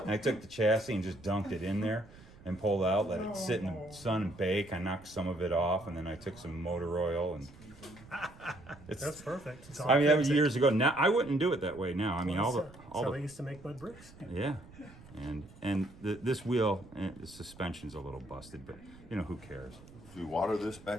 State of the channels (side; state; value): right; noise; rumble, 21 dB below the sound